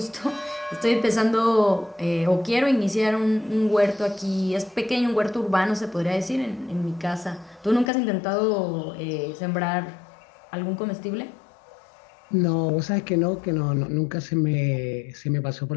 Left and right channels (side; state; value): right; drops out; at 7.9 s